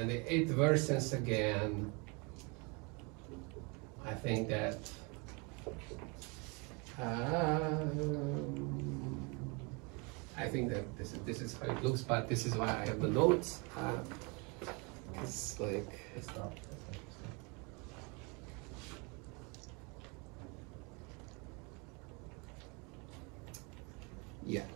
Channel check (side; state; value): left; quieter; 30.6 dB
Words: it worsens again. I think that this is how it looks, but this is why I have the notes. It's like It's not. yeah.